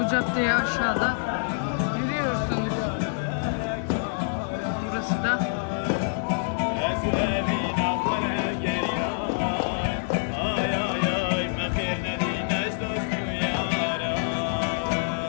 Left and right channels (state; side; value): silent; right; digital silence